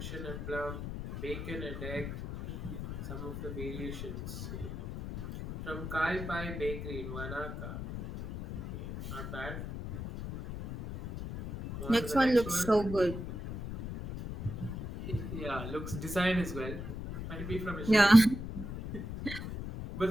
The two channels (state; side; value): noise; left; rumble, 7 dB below the sound